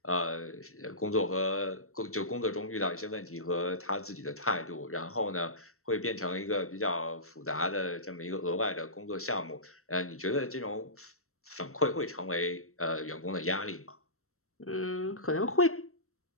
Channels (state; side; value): late; right; 0.63 ms